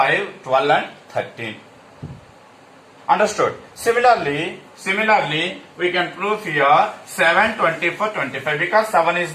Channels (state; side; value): identical; both; correlation 1.00